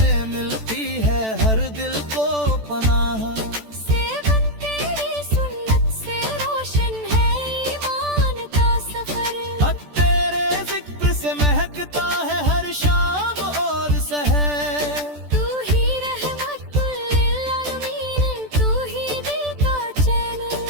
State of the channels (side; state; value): left; late; 14 ms